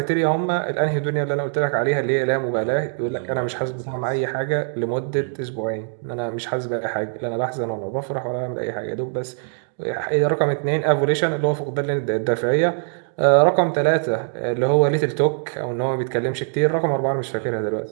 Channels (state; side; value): silent; left; digital silence